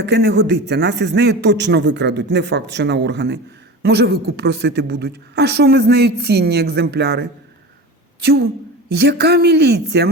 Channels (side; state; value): both; normal; correlation 0.31